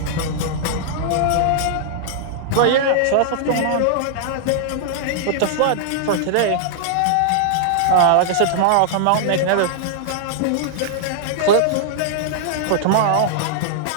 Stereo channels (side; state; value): both; different; correlation -0.01